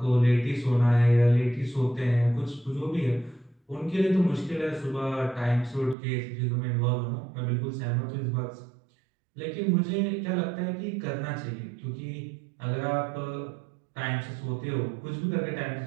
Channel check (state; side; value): drops out; left; at 6.0 s